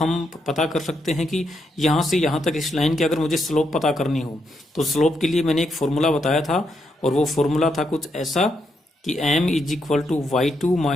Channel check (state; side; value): normal; both; correlation 0.80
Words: पता कर सकते हैं कि यहाँ से यहाँ तक इस लाइन की अगर मुझे स्लोप पता करनी हो तो स्लोप के लिए मैंने एक फॉर्मूला बताया था, और वो फॉर्मूला था कुछ ऐसा कि m is equal to y2